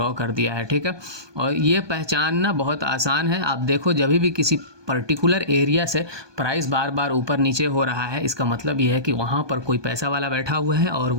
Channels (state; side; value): late; left; 1.2 ms